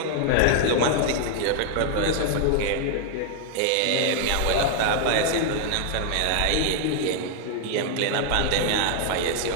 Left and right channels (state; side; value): different; both; correlation 0.00